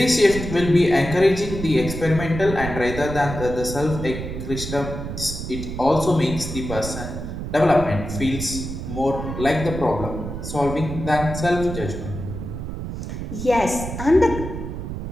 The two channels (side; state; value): right; noise; rumble, 7 dB below the sound